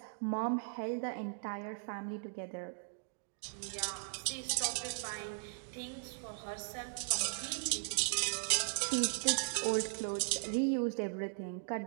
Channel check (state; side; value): silent; left; digital silence